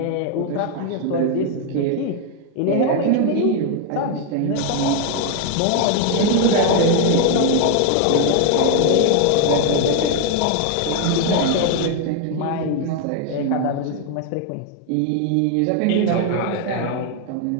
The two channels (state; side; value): different; both; correlation 0.01